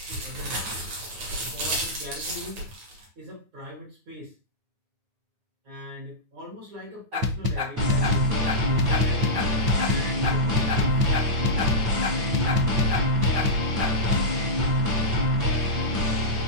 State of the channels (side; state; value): left; late; 9.7 ms